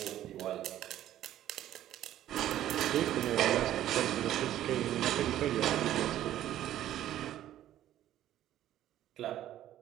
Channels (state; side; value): quieter; left; 12.5 dB